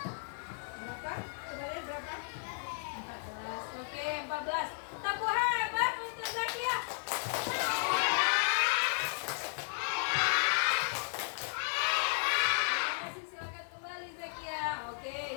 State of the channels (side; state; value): right; silent; digital silence